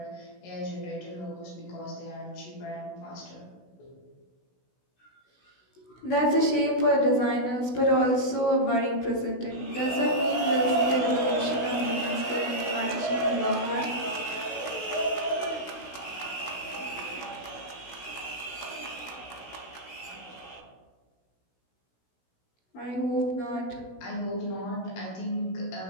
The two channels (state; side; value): late; right; 16 ms